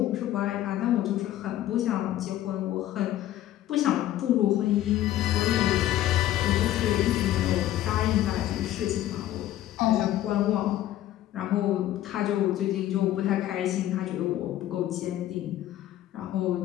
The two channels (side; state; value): right; quieter; 13.3 dB